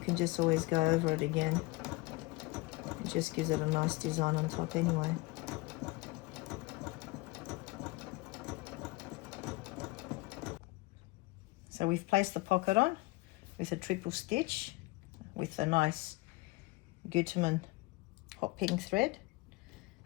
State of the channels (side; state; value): right; quieter; 22.7 dB